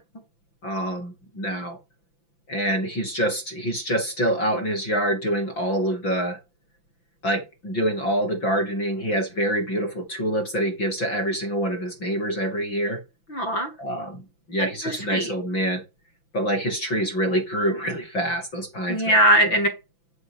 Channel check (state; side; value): late; right; 5.9 ms